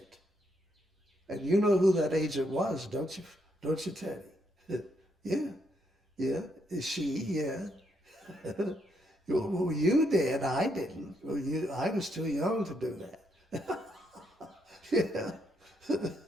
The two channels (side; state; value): both; normal; correlation 0.76